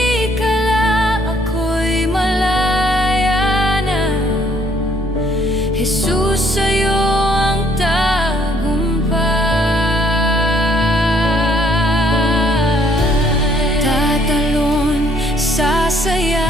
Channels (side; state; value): both; normal; correlation 0.65